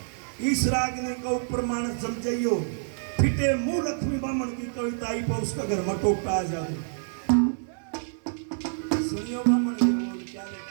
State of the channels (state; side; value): silent; left; digital silence